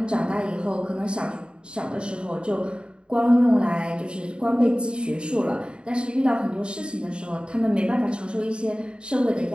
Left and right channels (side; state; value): left; late; 0.053 ms